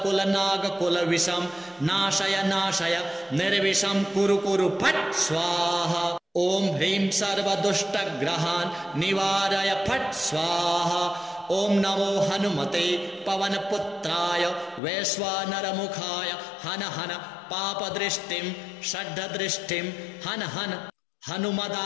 नागकुल विषम नाशय नाशय निर्विषम कुरु कुरु फट् स्वाहा। ॐ ह्रीं सर्वदुष्टग्रहान् निवारय फट् स्वाहा। ॐ नमो हनुमते पवनपुत्राय वैश्वानरमुखाय हन हन पापदृष्टिं षड्दृष्टिं हन हन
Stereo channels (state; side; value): drops out; right; at 14.8 s